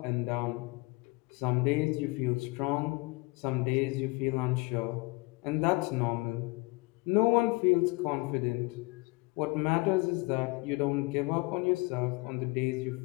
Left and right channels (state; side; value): quieter; right; 25.6 dB